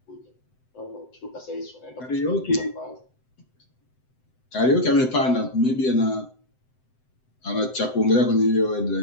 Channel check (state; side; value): late; right; 7.8 ms